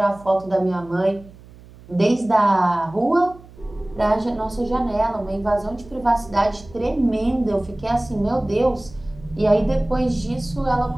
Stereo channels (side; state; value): right; noise; hum, 21 dB below the sound